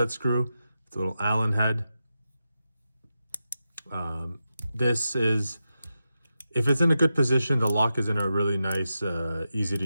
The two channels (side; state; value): both; inverted; correlation -0.89